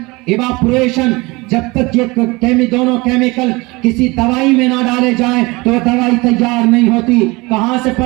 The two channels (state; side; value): quieter; left; 23.8 dB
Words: ایواپوریشن. جب تک یہ دونوں کیمیکل کسی دوائی میں نہ ڈالے جائیں تو دوائی تیار نہیں ہوتی. کہاں سے